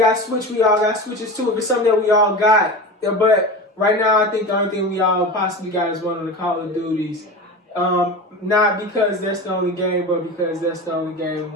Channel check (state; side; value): normal; both; correlation 0.29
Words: Switch, we all got Switches too. If it's something that we all got, yeah, but right now, I think the only thing we all possibly got is one of the Call of Duties. Not because that's the only game, but because that's the only game